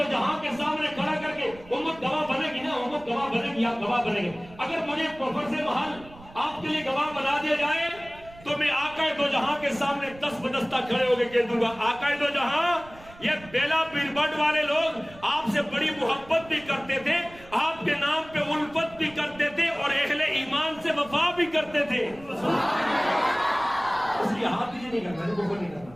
جہاں کے سامنے کھڑا کر کے امت گواہ بنے گی نا، امت گواہ بنے گی، آپ گواہ بنے گے۔ اگر مجھے فرض محل آپ کے لیے گواہ بنا دیا جائے تو میں آقا دو جہاں کے سامنے دست بدستہ کھڑے ہو کے کہہ دوں گا، آقا دو جہاں یہ بیلا پیربٹ والے لوگ آپ سے بڑی محبت بھی کرتے تھے، آپ کے نام پہ الفت بھی کرتے تھے، اور اہل ایمان سے وفا بھی کرتے تھے۔ اس لیے ہاتھ نہیں کرنا، کفر نہیں کرنا۔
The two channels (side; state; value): right; noise; rumble, 21 dB below the sound